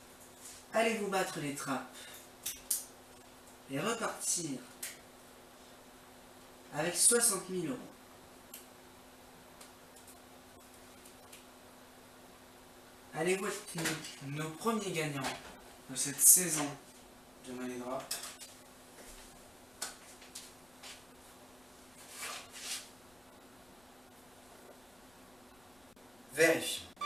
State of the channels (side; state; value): left; noise; rumble, 29 dB below the sound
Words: allez-vous battre les trappes et repartir avec 60 000 €? Allez-vous être nos premiers gagnants de cette saison de Money Drop? Vérifions.